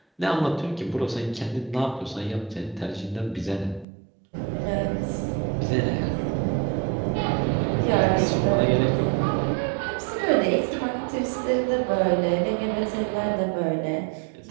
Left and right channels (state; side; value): drops out; left; at 3.9 s